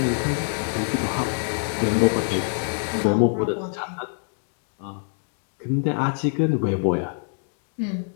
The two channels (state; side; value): silent; right; digital silence